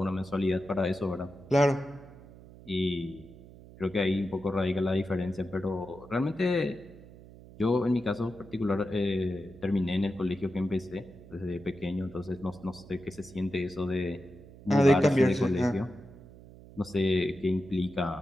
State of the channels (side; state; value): right; noise; hum, 19 dB below the sound